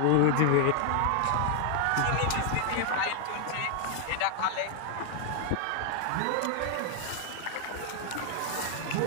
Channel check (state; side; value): different; both; correlation 0.00